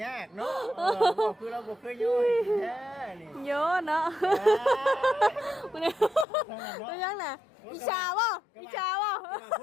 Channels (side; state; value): right; drops out; at 6.2 s